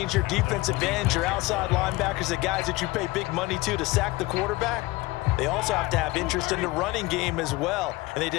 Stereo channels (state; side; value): quieter; right; 20.3 dB